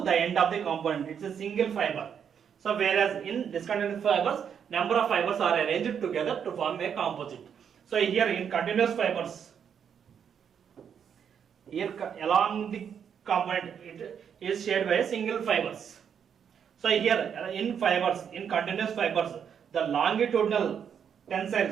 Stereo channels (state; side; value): quieter; left; 7.8 dB